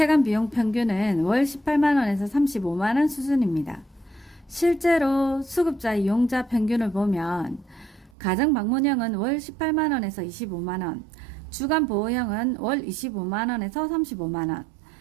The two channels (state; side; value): drops out; left; at 8.1 s